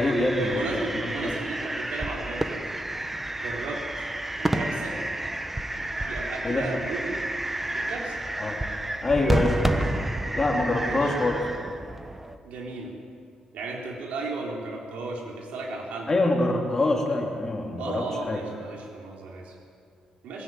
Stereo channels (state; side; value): normal; both; correlation 0.86